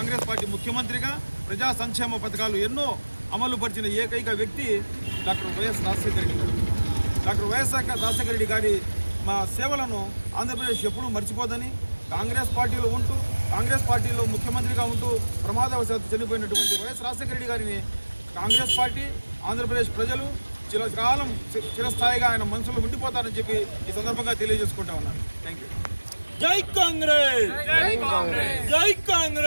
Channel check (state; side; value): inverted; both; correlation -1.00